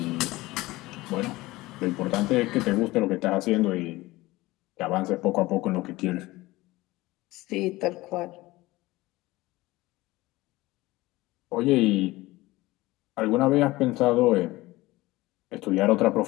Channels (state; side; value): quieter; right; 19.4 dB